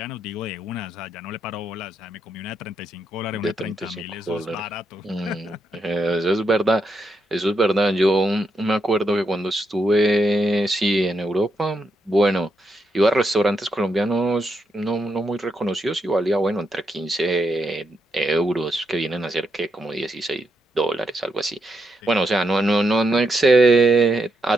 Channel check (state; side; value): normal; both; correlation 0.81